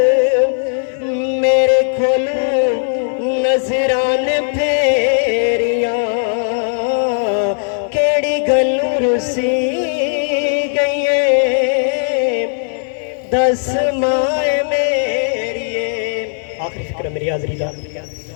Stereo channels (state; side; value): silent; right; 57 dB below the other